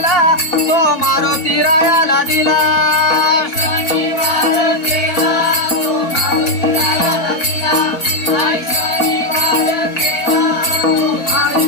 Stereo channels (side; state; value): right; late; 4.1 ms